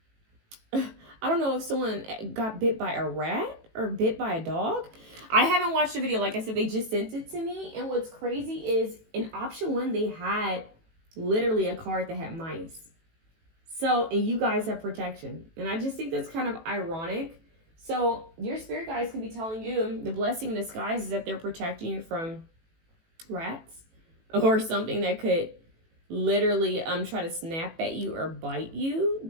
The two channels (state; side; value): late; left; 18 ms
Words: I don't know if someone got bit by a rat or bit by a dog. I haven't watched the video. Like I said, they just sent it to me. And what's crazy is in option 1, they had literally a card that had mice. So, and you guys have protection. And I just think that's kind of ironic. So your spirit guides could be telling you the blessing in disguise is that they're protecting you from rats or something that could literally try to snap at you or bite you.